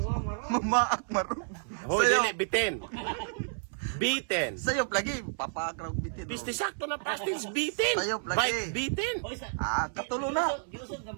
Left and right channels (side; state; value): left; silent; 57 dB below the other